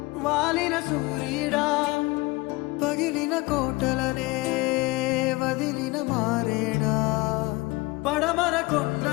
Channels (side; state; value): right; quieter; 23.1 dB